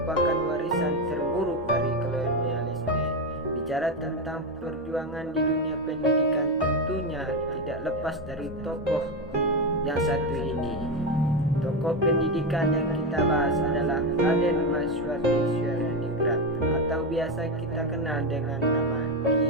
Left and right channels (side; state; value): both; normal; correlation 0.11